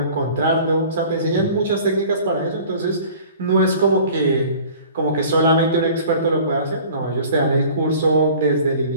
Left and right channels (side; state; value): both; inverted; correlation -0.47